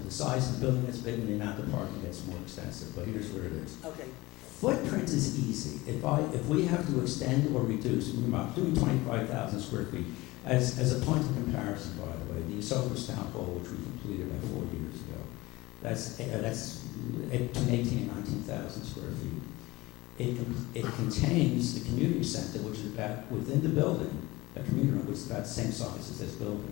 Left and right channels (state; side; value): quieter; right; 20.5 dB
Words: The size of the building gets bigger and the amount of parking gets more extensive, but here's where it is. Okay. Footprint is easy. If if we have to extend or reduce, I'm doing 25,000 square feet, as a point of comparison, by the way, the Esopus Town Hall, which we completed about 4 years ago, that's between 18 and 19,000 square feet. It contains the community center, which is about, within the building, a community room, which is about the same size as this